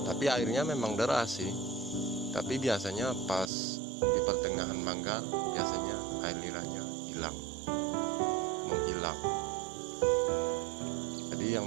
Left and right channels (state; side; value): drops out; left; at 3.5 s